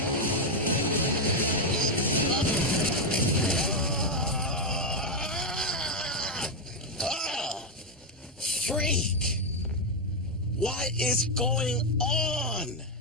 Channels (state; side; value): normal; both; correlation 0.03